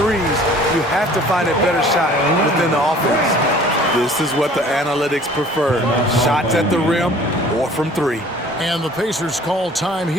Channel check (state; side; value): normal; both; correlation 0.50